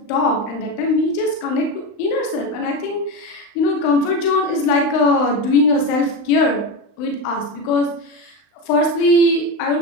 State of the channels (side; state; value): right; late; 35 ms